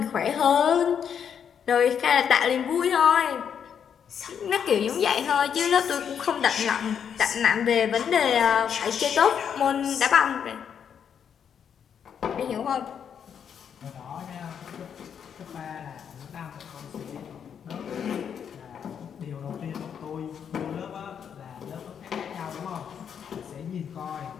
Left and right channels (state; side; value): quieter; right; 7.9 dB